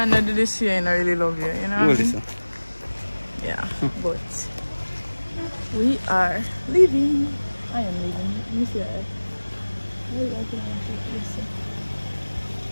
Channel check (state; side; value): inverted; both; correlation -1.00